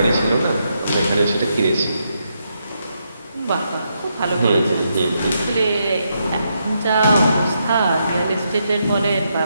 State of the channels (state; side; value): inverted; both; correlation -0.80